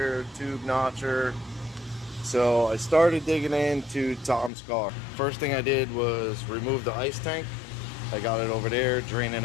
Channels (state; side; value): drops out; right; at 4.5 s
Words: tube notcher. So I started digging into Tom's car. First thing I did was remove the ice tank. I got it over there, draining